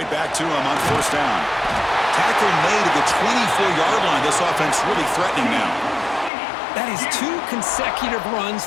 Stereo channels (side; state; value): right; drops out; at 6.3 s